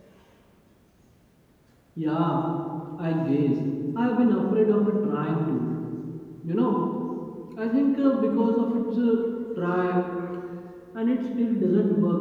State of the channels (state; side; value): identical; both; correlation 1.00